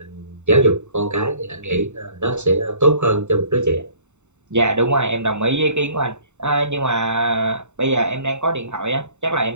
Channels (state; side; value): late; left; 0.83 ms